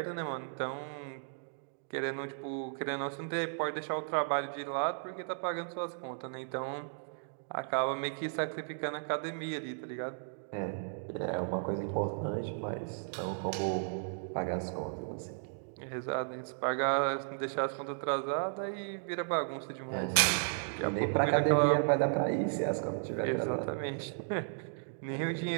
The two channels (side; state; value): left; silent; digital silence